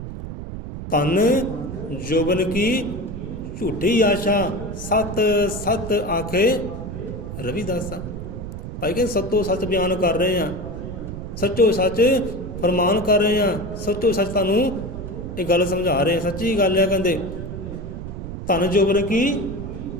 धन जोबन की झूठी आशा सत सत आखे रविदासा। भाई कहते सत्तो सच बयान कर रहे हैं, सच्चो सच फरमान कर रहे हैं, सच्चो सच तुहानू ये गल समझा रहे हैं। सच्ची गल है, कहते धन जोबन की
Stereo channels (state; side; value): noise; right; rumble, 8 dB below the sound